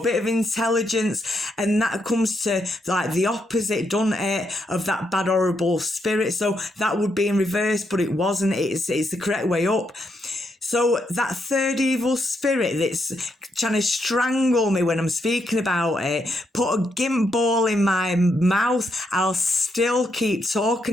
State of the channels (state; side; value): normal; both; correlation 0.79